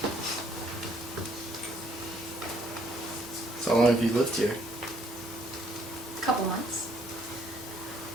So how long have you lived here? Couple months.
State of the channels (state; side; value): normal; both; correlation 0.66